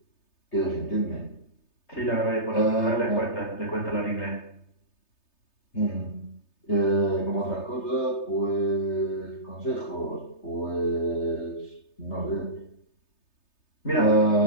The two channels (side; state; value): right; late; 3.3 ms